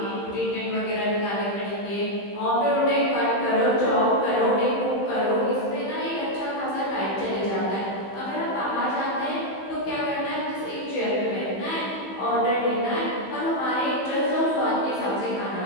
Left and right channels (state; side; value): late; right; 15 ms